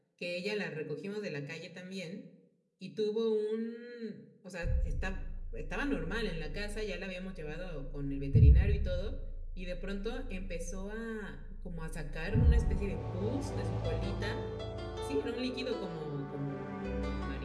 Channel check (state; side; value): identical; both; correlation 1.00